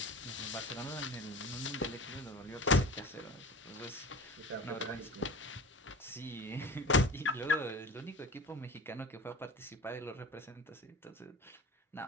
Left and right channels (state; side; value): normal; both; correlation 0.38